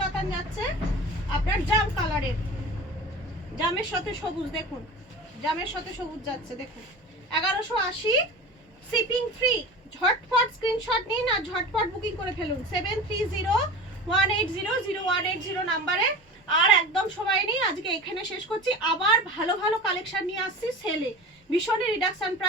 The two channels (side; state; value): both; normal; correlation 0.33